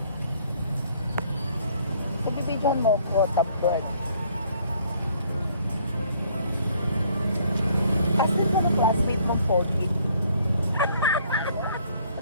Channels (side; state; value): both; inverted; correlation -0.61